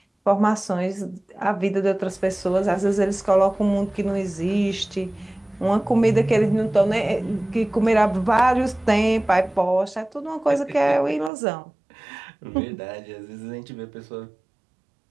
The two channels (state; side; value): drops out; left; at 11.3 s